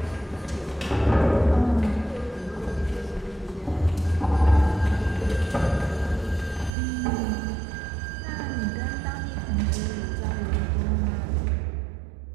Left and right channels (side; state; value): left; drops out; at 6.7 s